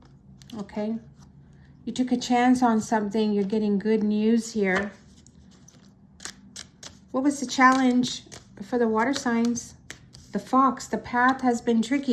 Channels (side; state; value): both; identical; correlation 1.00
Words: Okay? You took a chance on something, you're getting good news here. What was the challenge for the water signs? The Fox. The path has been